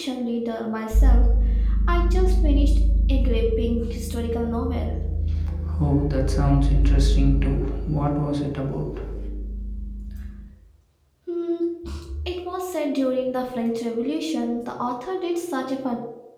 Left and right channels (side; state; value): both; identical; correlation 1.00